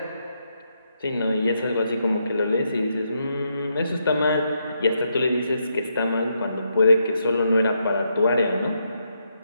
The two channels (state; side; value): inverted; both; correlation -0.80